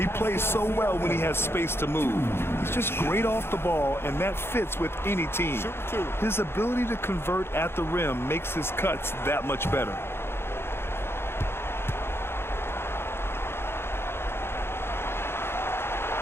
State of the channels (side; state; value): right; late; 0.11 ms